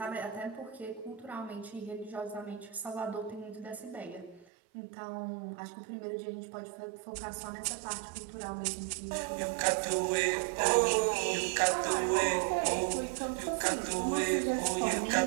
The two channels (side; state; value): left; drops out; at 4.5 s